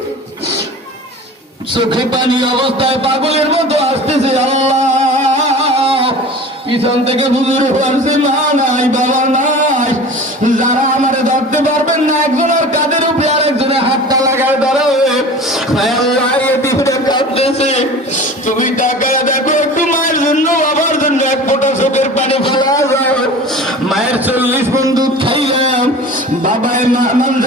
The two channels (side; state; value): both; normal; correlation 0.38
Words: চোখে পানি অবস্থায় পাগলের মতো আসতেছে আল্লাহ পিছন থেকে হুজুর বলছে মা নাই বাবা নাই যারা আমারে ধরতে পারবেন না একজনের কাঁধের উপরে আরেকজনের হাতটা লাগায় ধরাবে আল্লাহ এতিমরা কাঁদতেছে তুমি তাকায় দেখো একটু মায়ের জন্য বাবার জন্য এক ফোঁটা চোখের পানি ফেলা যায় মায়ের 40 মণ দুধ খাইলাম বাবায়